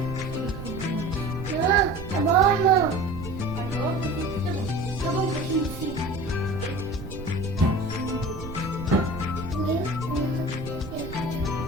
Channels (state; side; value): noise; right; rumble, 10 dB below the sound